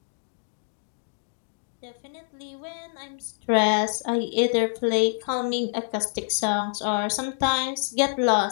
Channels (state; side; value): silent; right; digital silence